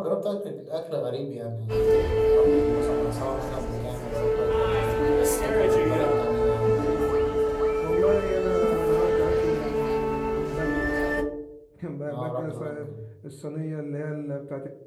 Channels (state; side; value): identical; both; correlation 1.00